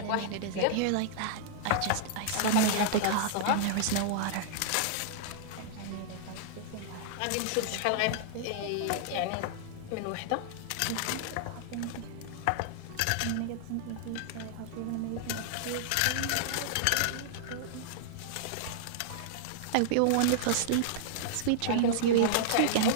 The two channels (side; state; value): both; different; correlation -0.01